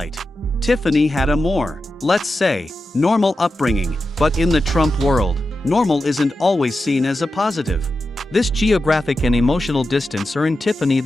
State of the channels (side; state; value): both; normal; correlation 0.91